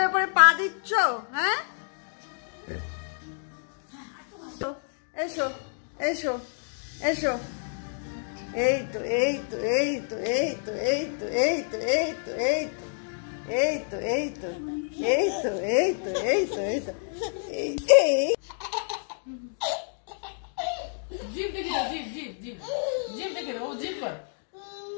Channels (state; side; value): silent; right; digital silence